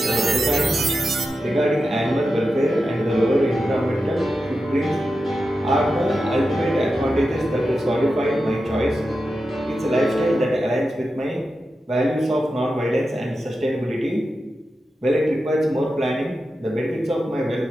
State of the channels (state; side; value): normal; both; correlation 0.90